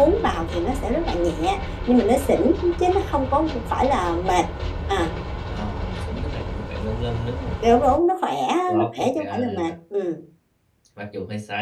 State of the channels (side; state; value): both; identical; correlation 1.00